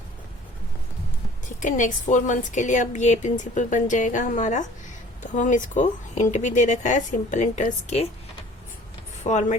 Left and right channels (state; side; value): normal; both; correlation 0.50